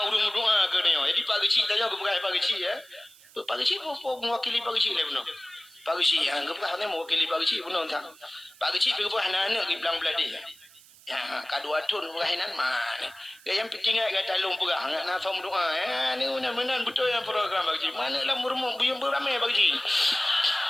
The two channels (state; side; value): noise; right; hiss, 24 dB below the sound